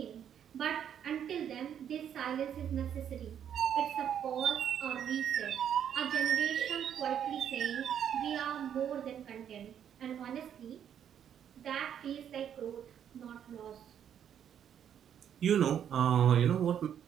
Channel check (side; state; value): left; quieter; 9.1 dB